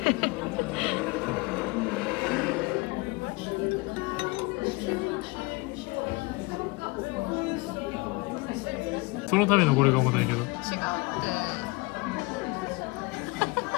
そのためのこれが重たいけど。違う。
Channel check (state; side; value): quieter; right; 24.7 dB